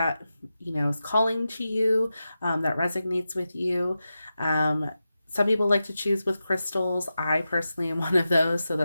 is calling to you, that resonates with you. Some people like to choose with crystals. I personally am one of those, so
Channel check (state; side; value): inverted; both; correlation -0.91